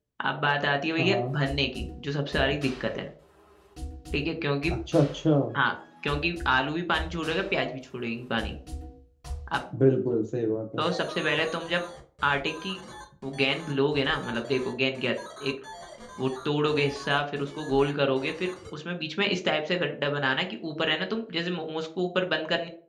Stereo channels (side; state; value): both; identical; correlation 1.00